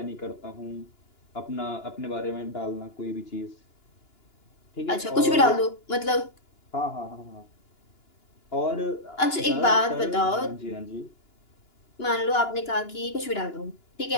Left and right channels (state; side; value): late; right; 2.9 ms